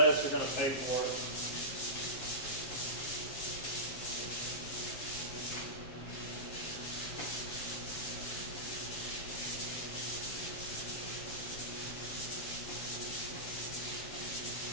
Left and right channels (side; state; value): right; late; 7.5 ms